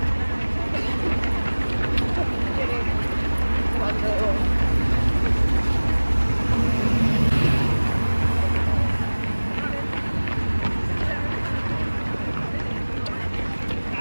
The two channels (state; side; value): inverted; both; correlation -1.00